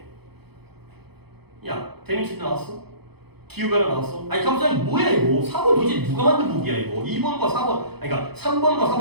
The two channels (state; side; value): late; left; 0.98 ms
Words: 야, 데미지 나왔어? 기후변화 나왔어? 아니 갑자기 뭐야 이거? 4번 도대체 누가 만든 복이야 이거? 2번과 4번 아니 그러니까 3번과